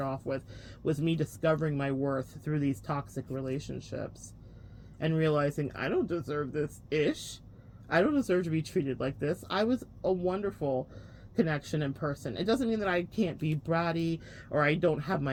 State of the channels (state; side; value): identical; both; correlation 1.00